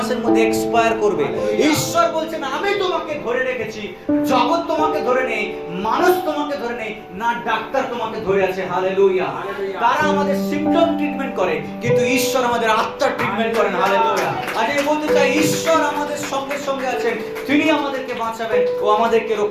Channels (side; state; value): both; identical; correlation 1.00